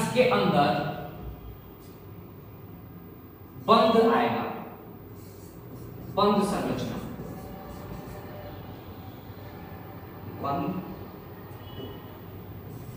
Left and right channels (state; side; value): identical; both; correlation 1.00